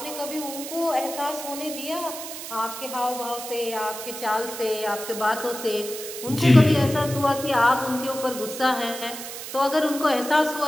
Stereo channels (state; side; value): noise; right; hiss, 9 dB below the sound